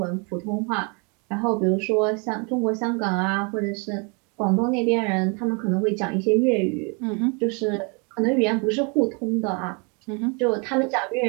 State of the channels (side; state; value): left; quieter; 33.5 dB